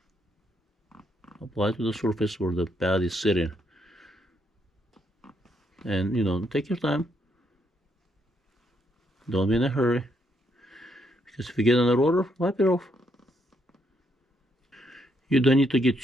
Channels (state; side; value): normal; both; correlation 0.74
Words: Apply to the surface where the pad is sitting, and you know, take your time. Don't be in a hurry, because if you get on the rotor, wipe it off. You don't need to get